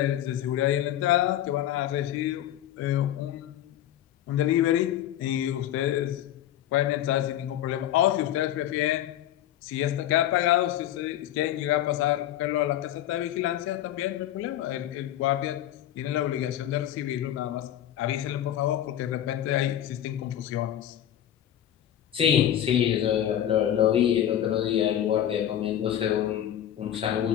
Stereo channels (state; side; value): quieter; right; 11.7 dB